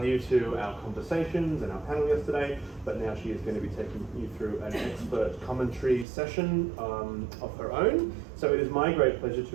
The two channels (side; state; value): left; drops out; at 6.1 s